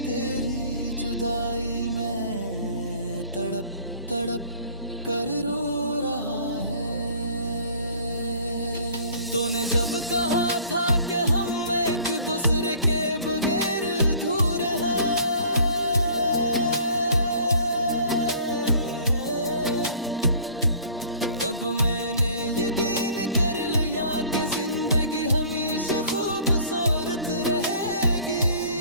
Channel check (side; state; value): both; inverted; correlation -0.51